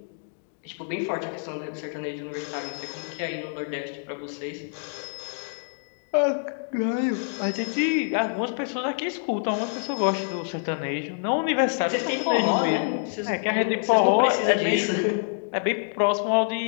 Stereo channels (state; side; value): silent; right; digital silence